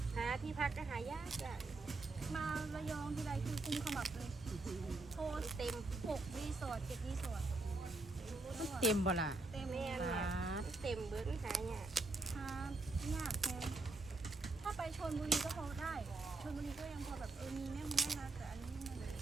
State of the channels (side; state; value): left; quieter; 3.2 dB